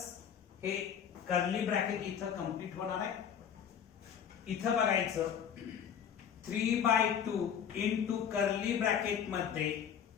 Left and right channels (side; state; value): right; quieter; 8.2 dB